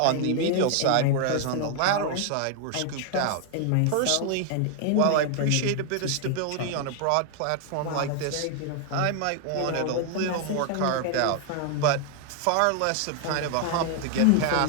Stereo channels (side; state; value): both; different; correlation 0.00